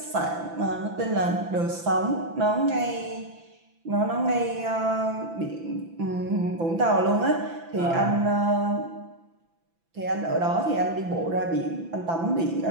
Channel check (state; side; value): late; left; 6.0 ms